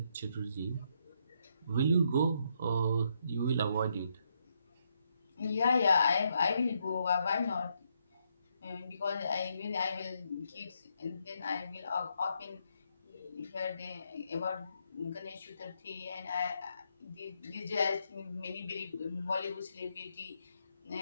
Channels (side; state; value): both; inverted; correlation -0.77